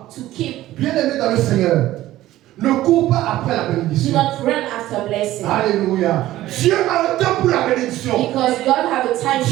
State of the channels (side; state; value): left; quieter; 15.1 dB